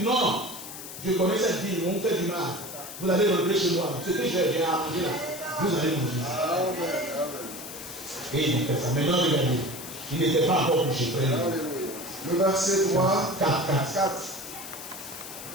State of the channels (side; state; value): left; noise; hiss, 11 dB below the sound